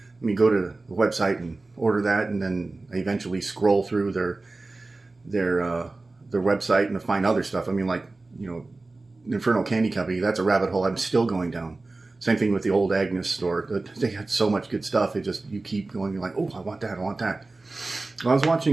go to the website and order that, and then I eventually scroll through their website and to find other stuff. I mean, like, Infernal Candy Company, that's a rabbit hole I'm still going down. Same thing with the old Agnes store. They had so much good stuff. You keep going, you're like, oh, I want that, I want that. Well, I was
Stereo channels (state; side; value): quieter; left; 3.3 dB